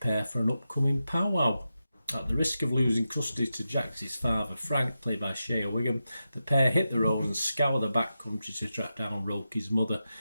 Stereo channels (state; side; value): inverted; both; correlation -0.90